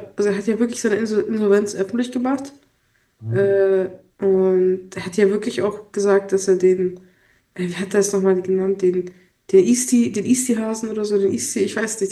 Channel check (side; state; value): both; identical; correlation 1.00